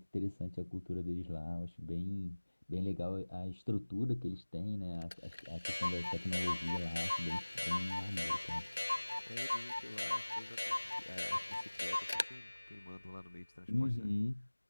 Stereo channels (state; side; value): inverted; both; correlation -1.00